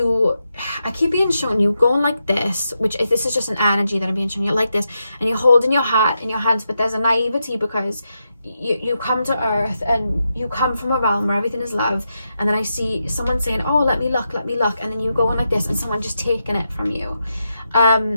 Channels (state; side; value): inverted; both; correlation -0.86